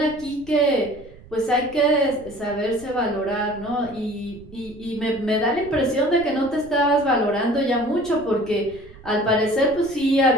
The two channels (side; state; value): right; noise; rumble, 21 dB below the sound